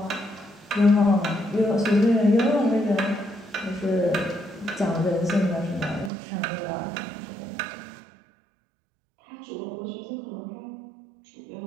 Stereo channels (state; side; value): drops out; left; at 6.1 s